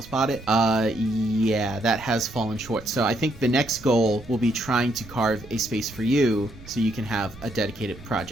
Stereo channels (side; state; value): right; noise; rumble, 19 dB below the sound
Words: bought it. Yeah, that has fallen short. So I think the next goal will be trying to carve a space for you so you can have a dedicated